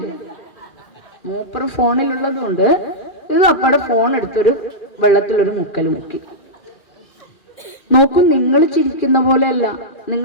മൂപ്പർ ഫോണിലുള്ളത് കൊണ്ട് ഇത് അപ്പടെ ഫോൺ എടുത്തൊരു വെള്ളത്തിലൊരു മുക്കല് മുക്കി. നോക്കൂ, നിങ്ങൾ ചിരിക്കുന്ന പോലെയല്ല.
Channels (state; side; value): late; right; 2.4 ms